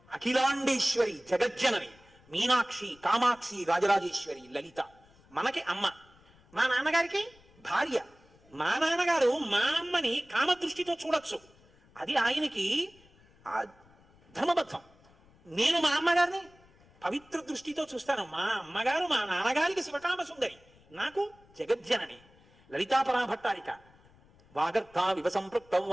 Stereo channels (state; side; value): noise; left; rumble, 28 dB below the sound